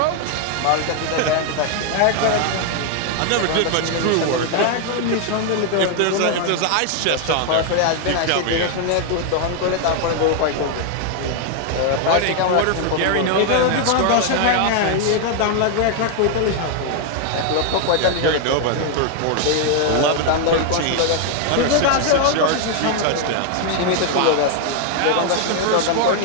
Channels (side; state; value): both; different; correlation 0.00